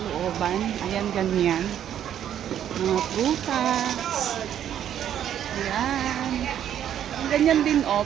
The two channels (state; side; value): quieter; left; 10.2 dB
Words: Ayan, ganyan. Mga prutas. Ayan. Ganyan din